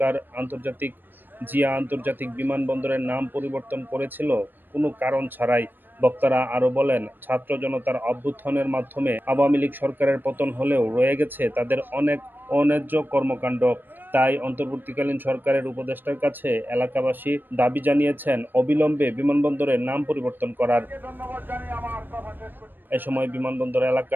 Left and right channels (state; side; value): late; left; 0.093 ms